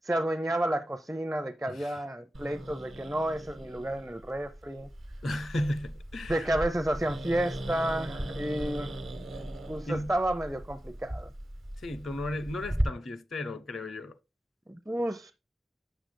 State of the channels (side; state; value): both; normal; correlation 0.92